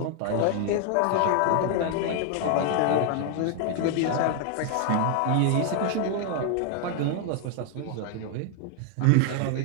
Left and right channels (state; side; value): different; both; correlation 0.00